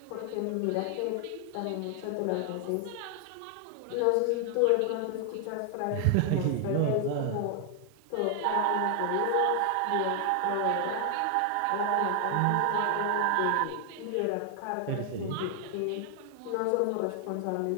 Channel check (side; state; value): both; different; correlation 0.00